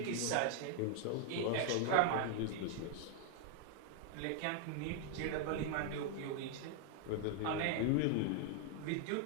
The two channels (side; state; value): both; different; correlation 0.00